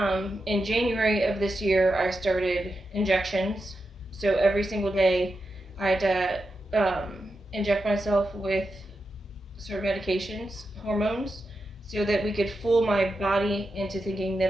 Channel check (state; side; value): normal; both; correlation 0.88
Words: In January of this year, I started injections. So every single day, I had to inject myself with certain medications, hormones, so that we could fool my body into thinking that